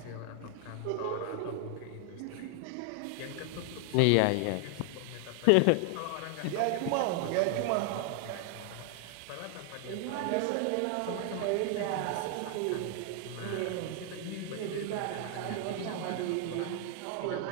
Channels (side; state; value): both; different; correlation 0.00